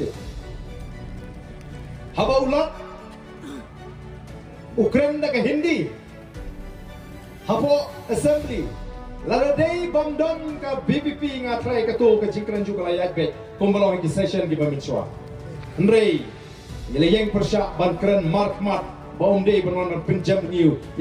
haba ulat Ukraine da ke Hindi hapo assembly laladai bamdon ka BPP ngatrai ka to ka jingkran juga layak bet kumbalong ki session di paminswa ndrei nilai persyak ban keren mark baum day berwarna penjam new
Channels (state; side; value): identical; both; correlation 1.00